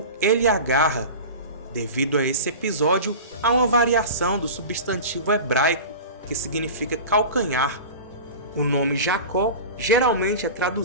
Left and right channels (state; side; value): inverted; both; correlation -0.32